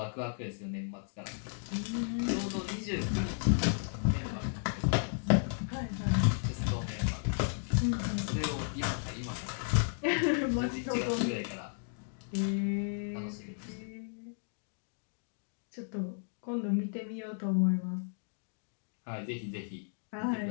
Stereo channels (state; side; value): silent; right; digital silence